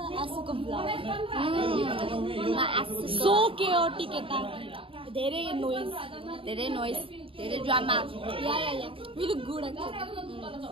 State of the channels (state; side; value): late; left; 0.26 ms